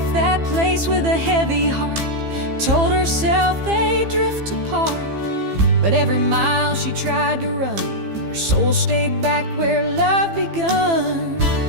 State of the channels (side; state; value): left; late; 15 ms